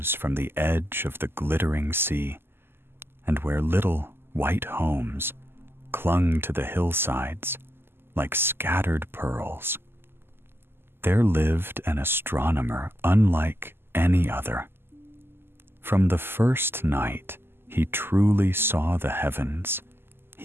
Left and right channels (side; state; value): left; late; 0.11 ms